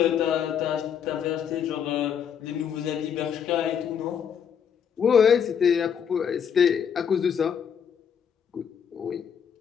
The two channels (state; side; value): quieter; right; 7.8 dB